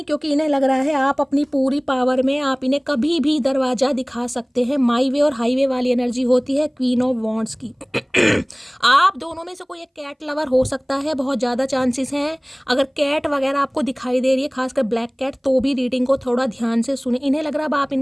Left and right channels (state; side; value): identical; both; correlation 1.00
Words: क्योंकि इन्हें लग रहा है आप अपनी पूरी पावर में, आप इन्हें कभी भी दरवाजा दिखा सकते हैं। माई वे और हाईवे वाली एनर्जी होती है क्वीन ऑफ वॉन्ड्स की। आप दोनों में से कोई एक कैट लवर हो सकता है, बहुत ज़्यादा चांसेस हैं। अगर कैट वगैरह आपको दिखाई दे रही है, खासकर ब्लैक कैट, तो भी रीडिंग को थोड़ा ध्यान से सुने। इन्हें लग रहा है अब आप